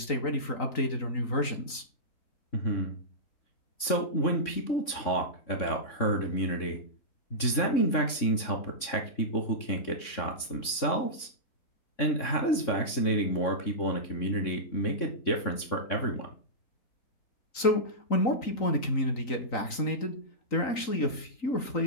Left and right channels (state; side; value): late; right; 3.6 ms